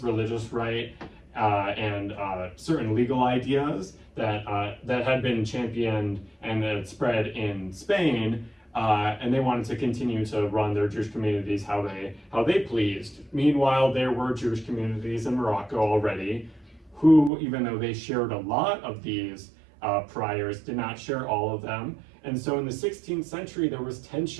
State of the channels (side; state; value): left; drops out; at 17.3 s